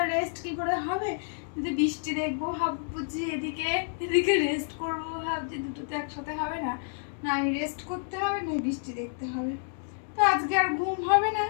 রেস্ট কি করে হবে, যদি বৃষ্টি দেখবো ভাববো যে এদিকে এদিকে রেস্ট করবো, ভাবছি দুটো তো একসাথে হবে না। না রেস্ট করতে হবে, না বৃষ্টি দেখতে হবে। তো আজকে আর ঘুম হবে না,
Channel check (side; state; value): right; silent; digital silence